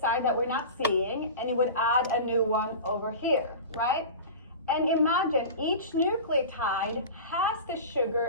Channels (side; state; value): both; inverted; correlation -0.32